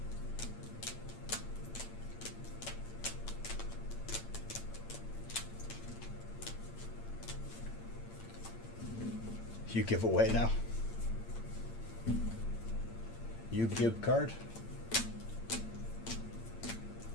You give away now. Yu-Gi-Oh card.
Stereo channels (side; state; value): right; late; 8.8 ms